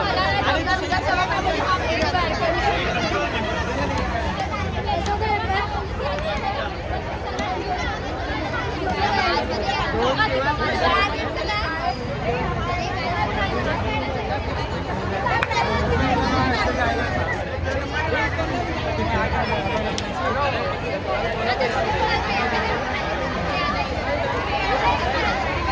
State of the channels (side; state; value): both; identical; correlation 1.00